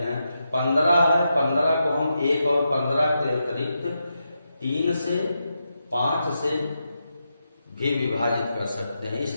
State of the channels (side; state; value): both; inverted; correlation -0.86